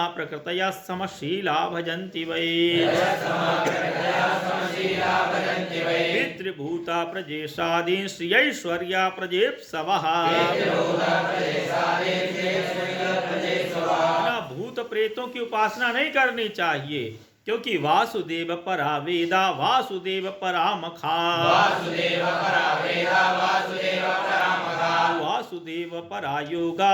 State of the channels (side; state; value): both; identical; correlation 1.00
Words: प्रकृतया समशीला भजन्ति वै पितृभूता प्रजेशादीन् श्रियैश्वर्या प्रजेप्सवः भूत प्रेतों की उपासना नहीं करनी चाहिए, क्योंकि वासुदेव परा वेदा वासुदेव परा मखा वासुदेव परा